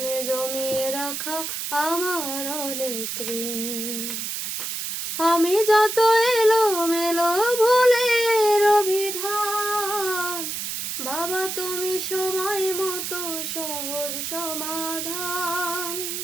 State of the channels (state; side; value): noise; right; hiss, 4 dB below the sound